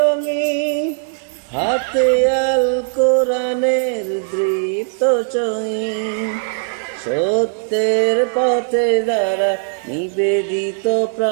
হাতে আল কোরআনের দৃপ্ত চহিন। সত্যের পথে যারা নিবেদিত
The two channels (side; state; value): left; silent; digital silence